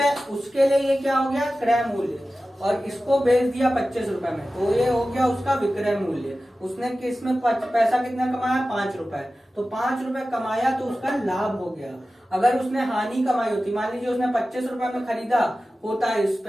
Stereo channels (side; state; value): both; normal; correlation 0.95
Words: उसके लिए ये क्या हो गया, क्रय मूल्य, और इसको बेच दिया 25 रुपए में, तो ये हो गया उसका विक्रय मूल्य। उसने किसमें पैसा कितना कमाया, 5 रुपए, तो 5 रुपए कमाया तो उसका लाभ हो गया। अगर उसने हानि कमाई होती, मान लीजिए उसने 25 रुपए में खरीदा होता है इस